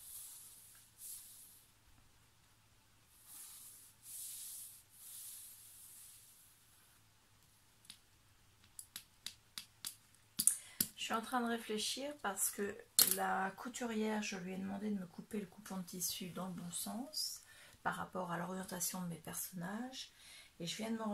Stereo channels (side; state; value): both; identical; correlation 1.00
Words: Je suis en train de réfléchir parce que la couturière, je lui ai demandé de me couper le coupon de tissu dans le bon sens par rapport à l'orientation de mes personnages. Et je viens de me